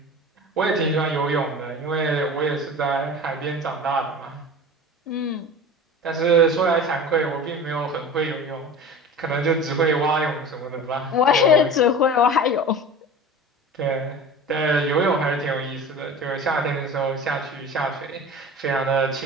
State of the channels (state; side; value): normal; both; correlation 0.36